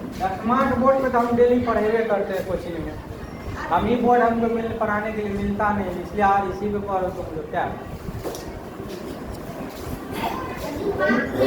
स्मार्ट बोर्ड पे तो हम डेली पढ़ेबे करते हैं कोचिंग में, हम ही बोर्ड हमको पढ़ाने के लिए मिलता नहीं, इसलिए आज इसी पे पढ़ो तुम लोग। क्या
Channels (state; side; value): identical; both; correlation 1.00